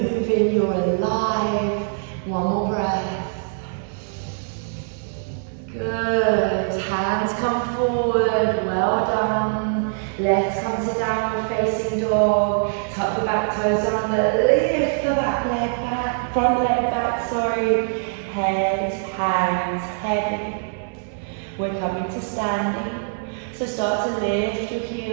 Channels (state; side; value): silent; left; 63 dB below the other